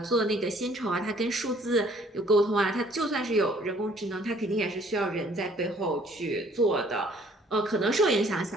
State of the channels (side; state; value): both; normal; correlation 0.59